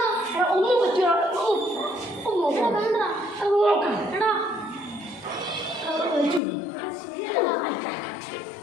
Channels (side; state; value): right; drops out; at 6.4 s